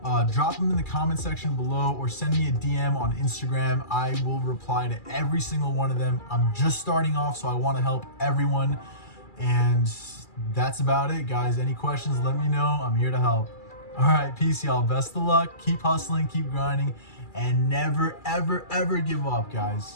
drop them in the comment section below or send me a DM on Instagram. I will reply to every single one of them. I'm just starting off, so I want to help everyone. And that's about it, guys. Any questions, let me know. I'm here to help. All right, peace, y'all. Best of luck. Keep hustling, keep grinding, and never, ever, ever give up,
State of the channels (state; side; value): late; right; 2.3 ms